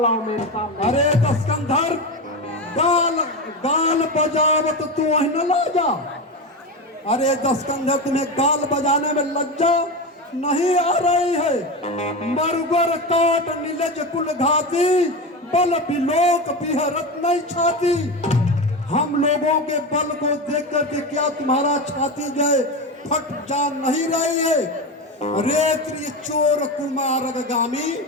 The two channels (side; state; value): both; normal; correlation 0.20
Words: मेरे सामने। अरे दस्कंधर, गाल गाल बजावत तू न लाजा। अरे दस्कंधर, तुम्हें गाल बजाने में लज्जा नहीं आ रही है? मरगर काट नीलज कुल घाती, बल बिलोक बिहरत नहीं छाती। हम लोगों के बल को देख करके क्या तुम्हारा छाती जो है फट जा नहीं रही है? रेत्री चोर कुमार गामी,